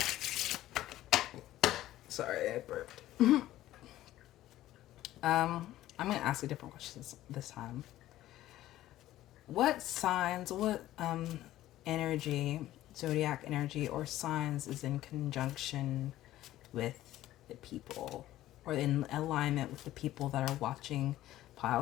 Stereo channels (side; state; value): right; quieter; 14.5 dB